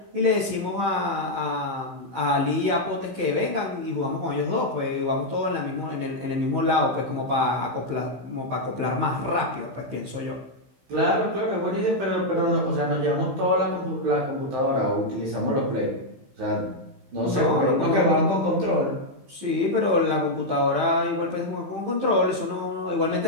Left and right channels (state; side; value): late; left; 15 ms